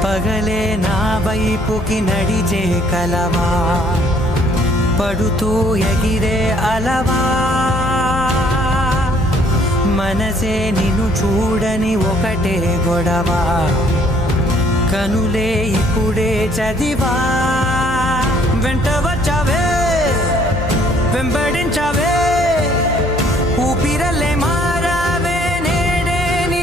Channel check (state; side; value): normal; both; correlation 0.61